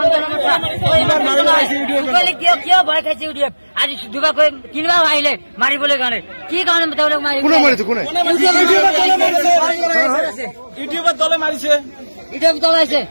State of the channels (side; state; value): both; inverted; correlation -1.00